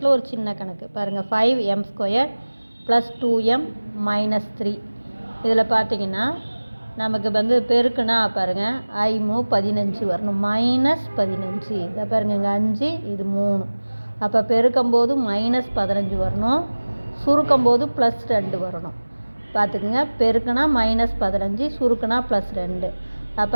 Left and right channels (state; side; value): inverted; both; correlation -1.00